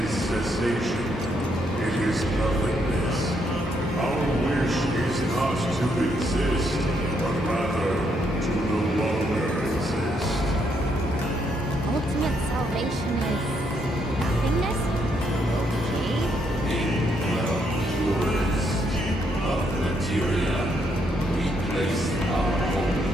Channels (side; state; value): both; normal; correlation 0.74